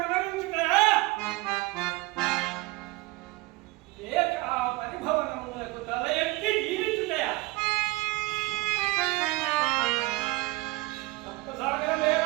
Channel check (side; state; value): left; quieter; 21.3 dB